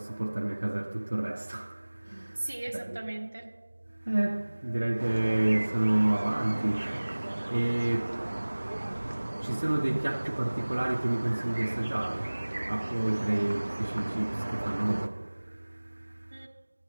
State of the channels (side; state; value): both; inverted; correlation -1.00